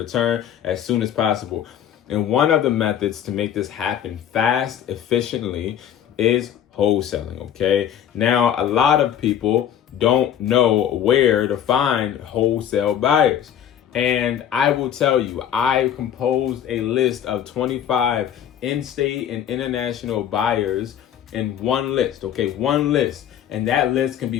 as soon as possible. And one of the methods to make this happen fast, efficiently, is wholesaling, okay? Now, a lot of people don't know where to find wholesale buyers. And I will tell you, I composed a list of 25 in-state and international buyers in one list, okay? One list. And that list can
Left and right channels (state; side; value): quieter; right; 9.7 dB